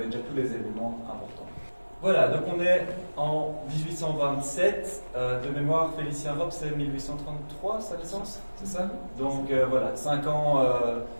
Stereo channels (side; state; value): both; inverted; correlation -1.00